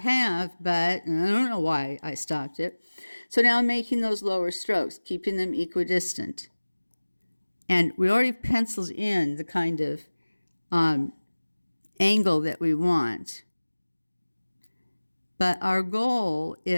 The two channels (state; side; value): inverted; both; correlation -1.00